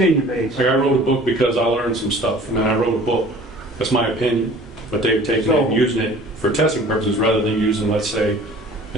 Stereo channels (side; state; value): both; normal; correlation 0.47